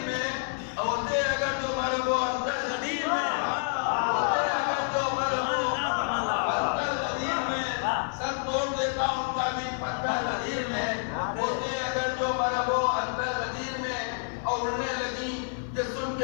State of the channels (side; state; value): right; silent; 57 dB below the other